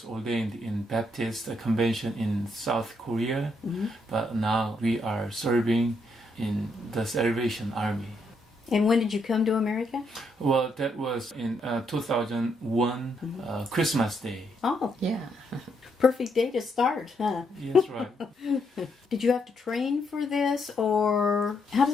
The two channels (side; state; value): both; normal; correlation 0.76